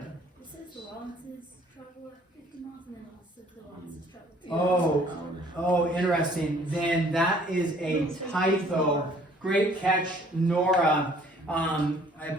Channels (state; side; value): normal; both; correlation 0.57